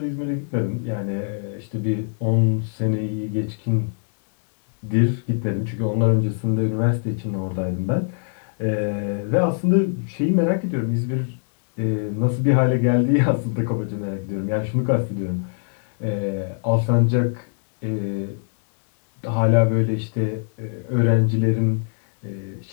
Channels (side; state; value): right; silent; 63 dB below the other